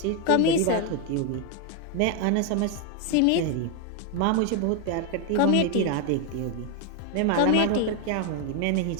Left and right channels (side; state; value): both; different; correlation 0.01